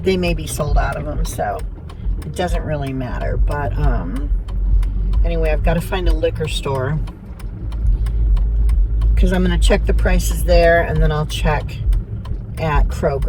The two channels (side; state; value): both; identical; correlation 1.00